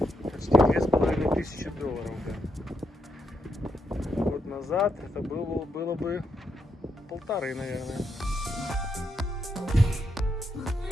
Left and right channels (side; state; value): both; normal; correlation 0.80